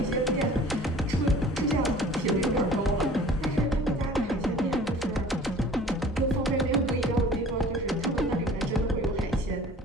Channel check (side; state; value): both; normal; correlation 0.47